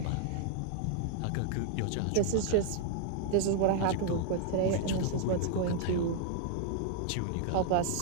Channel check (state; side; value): different; both; correlation 0.00